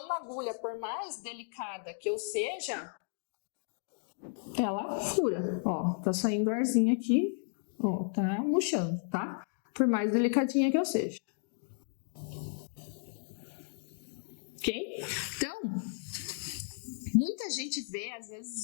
uma agulha, por mais delicada que eu seja, ela fura. Ó, tá saindo arzinho aqui, ó, tá murchando, tá? Por mais delicadinha que eu seja. Ok? Então, muita gente vê, às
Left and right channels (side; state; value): right; silent; digital silence